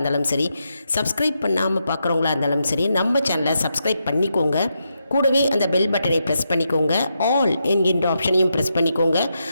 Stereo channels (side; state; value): both; inverted; correlation -0.84